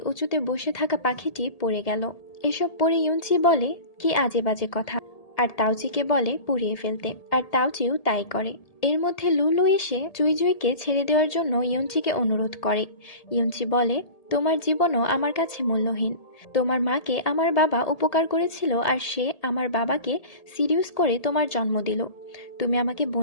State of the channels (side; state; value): right; late; 1.8 ms